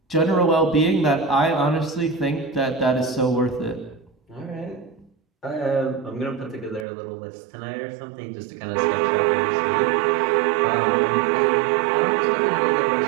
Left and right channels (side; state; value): left; drops out; at 6.9 s